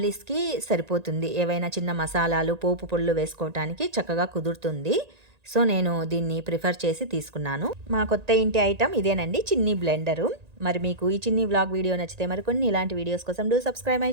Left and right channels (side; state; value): left; late; 1.9 ms